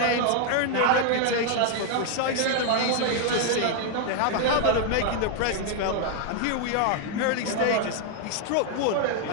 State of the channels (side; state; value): both; different; correlation 0.00